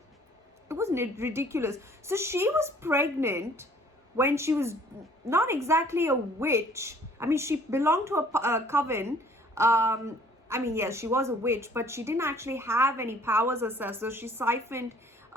It was ridiculous. So she was pregnant when she was not exactly a witch. I mean, she belonged to a coven. I mean, yes, she was a witch, but she didn't actually have any powers herself. So she siphoned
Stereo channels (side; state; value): both; normal; correlation 0.56